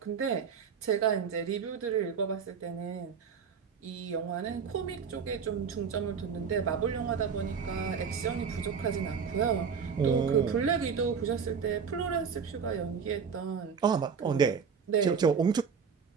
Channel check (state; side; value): quieter; left; 6.4 dB